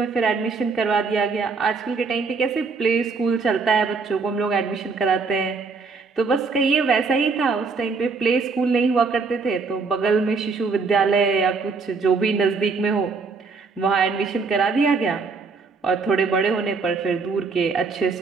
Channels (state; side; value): quieter; left; 4.6 dB